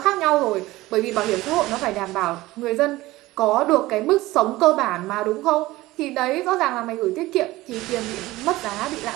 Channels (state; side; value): quieter; left; 18.4 dB